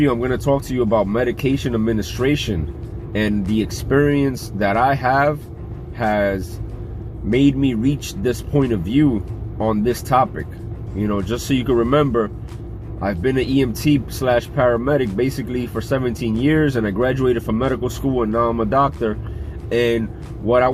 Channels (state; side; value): identical; both; correlation 1.00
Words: I'm going to talk to you about medication administration, and the experience that I have has made me reach this point of view on this topic. You know, just so you can remember, I've been an EMT / paramedic basically for 17 years, and I graduated from medical school, and now I'm a doctor. And what I